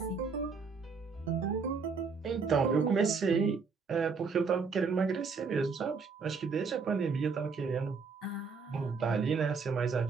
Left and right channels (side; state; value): left; quieter; 5.1 dB